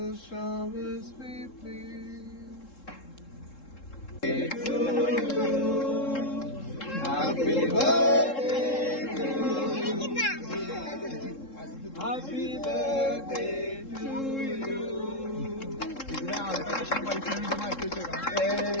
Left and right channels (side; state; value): right; late; 3.7 ms